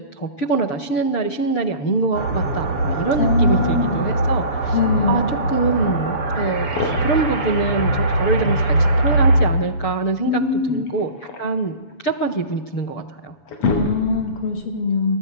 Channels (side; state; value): right; late; 7.1 ms